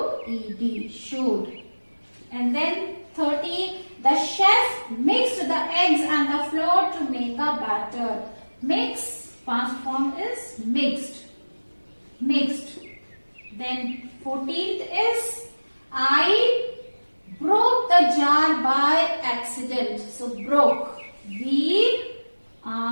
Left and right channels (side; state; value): both; inverted; correlation -1.00